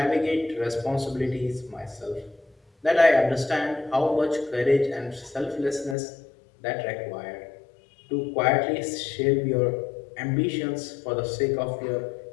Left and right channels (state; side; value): drops out; right; at 6.0 s